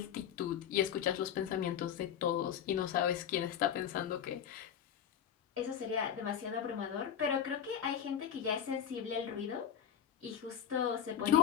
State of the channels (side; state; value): right; quieter; 8.9 dB